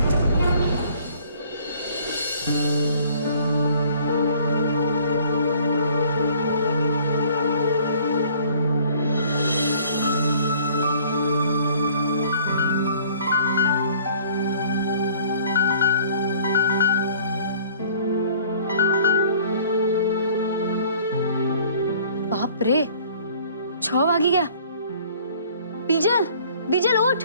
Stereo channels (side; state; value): both; inverted; correlation -0.55